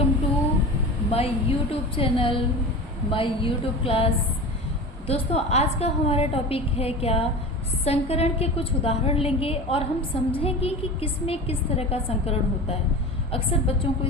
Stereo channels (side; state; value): both; normal; correlation 0.31